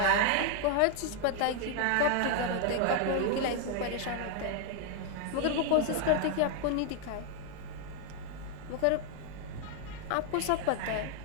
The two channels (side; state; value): both; different; correlation 0.00